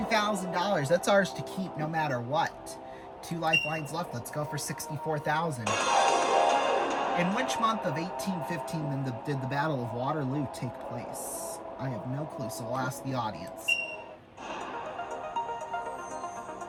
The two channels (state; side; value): identical; both; correlation 1.00